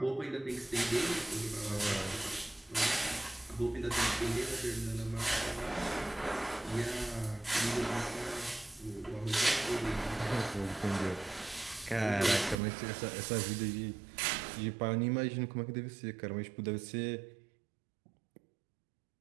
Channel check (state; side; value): drops out; left; at 12.6 s